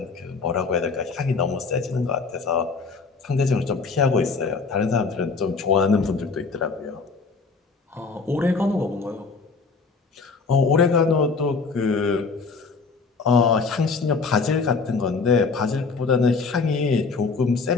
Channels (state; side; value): quieter; right; 4.6 dB